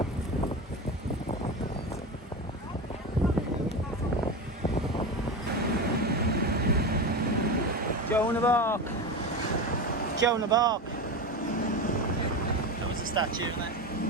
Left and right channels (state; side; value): normal; both; correlation 0.22